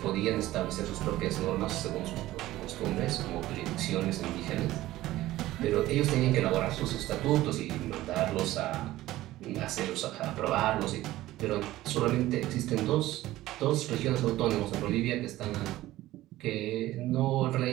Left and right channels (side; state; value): left; quieter; 16.0 dB